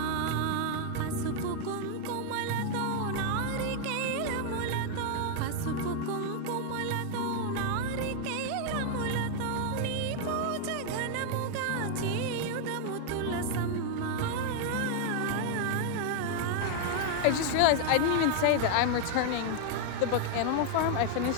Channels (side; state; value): both; different; correlation 0.00